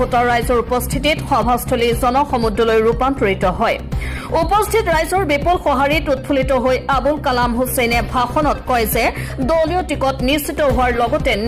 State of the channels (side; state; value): both; identical; correlation 1.00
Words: ৰাইজৰ উপস্থিতিত সভাস্থলী জনসমুদ্ৰলৈ ৰূপান্তৰিত হয়। উপস্থিত ৰাইজৰ বিপুল সঁহাৰিত উৎফুল্লিত হৈ আবুল কালাম হুছেইনে ভাষণত কয় যে দলীয় টিকট নিশ্চিত হোৱাৰ লগতে